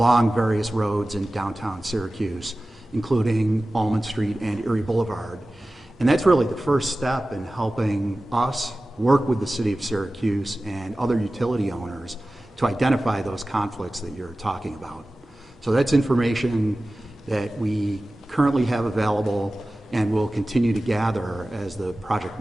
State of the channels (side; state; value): both; normal; correlation 0.96